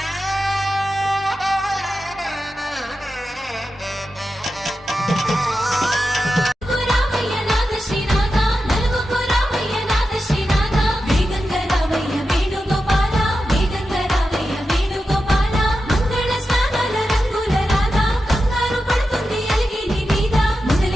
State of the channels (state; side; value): normal; both; correlation 0.90